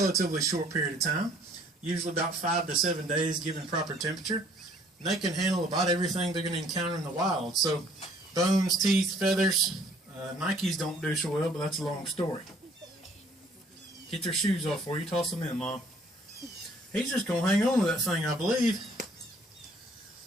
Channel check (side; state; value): both; normal; correlation 0.59